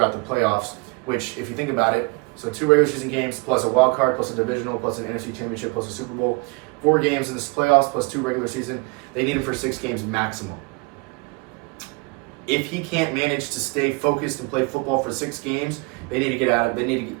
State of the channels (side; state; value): left; quieter; 28.4 dB